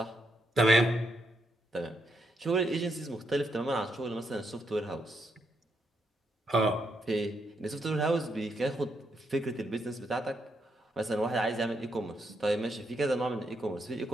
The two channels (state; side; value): normal; both; correlation 0.79